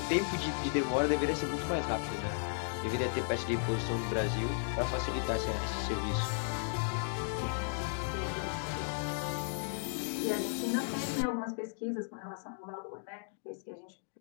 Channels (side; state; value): right; silent; digital silence